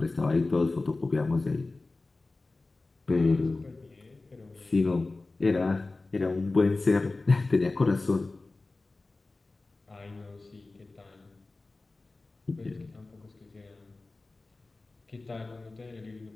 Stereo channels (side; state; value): right; quieter; 3.3 dB